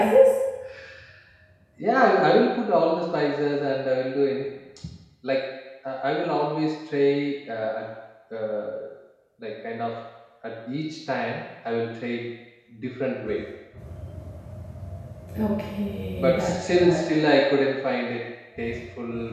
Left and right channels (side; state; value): both; identical; correlation 1.00